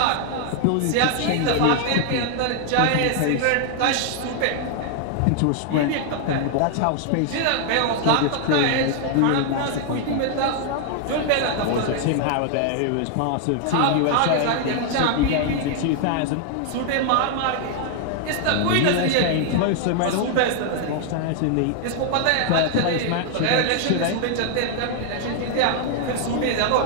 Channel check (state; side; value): different; both; correlation 0.00